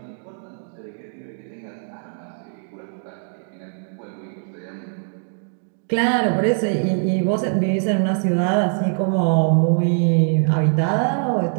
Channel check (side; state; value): left; silent; digital silence